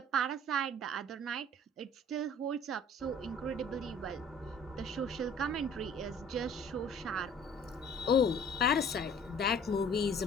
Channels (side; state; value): both; normal; correlation 0.51